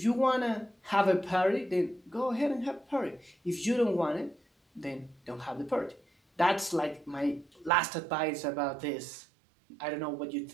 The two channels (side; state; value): left; drops out; at 7.7 s